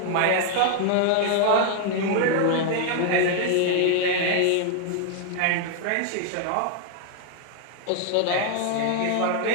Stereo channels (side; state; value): both; different; correlation 0.00